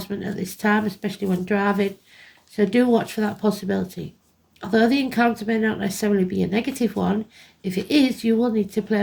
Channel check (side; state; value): both; identical; correlation 1.00